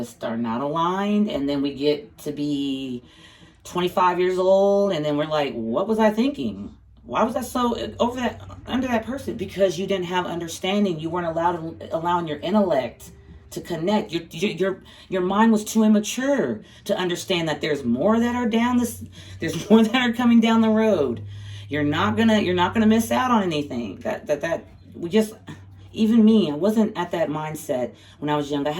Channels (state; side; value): identical; both; correlation 1.00